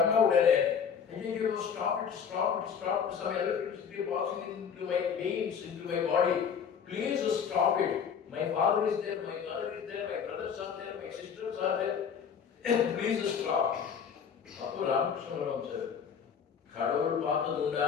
உடனே, stop it, some electricity passing into my veins, into my body. Please stop it. My father is there, my mother is there, my brothers are there, my sisters are there. Please stop. அப்போ ராமகிருஷ்ண பரமஹம்சர், கடவுள் பார்த்தது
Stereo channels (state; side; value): quieter; right; 7.1 dB